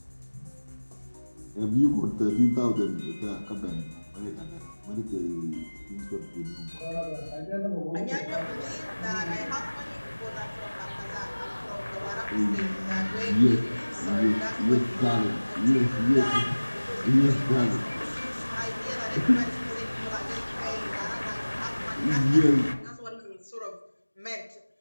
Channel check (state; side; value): inverted; both; correlation -1.00